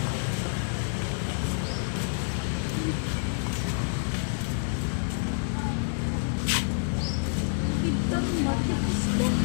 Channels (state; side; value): silent; right; digital silence